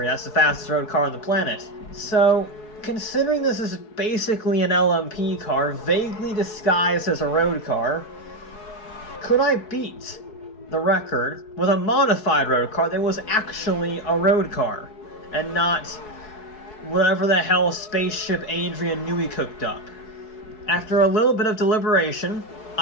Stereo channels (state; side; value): late; right; 4.7 ms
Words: That's the fastest road car on the planet. So, considering this is basically an LMP car, vaguely disguised as a road car, could I beat the record with a modified road car that was actually a road car, and not whatever the hell spaceship Adrian Newey cooked up? After a little bit of deliberation,